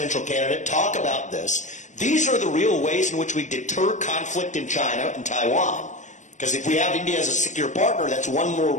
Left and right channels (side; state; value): right; late; 0.35 ms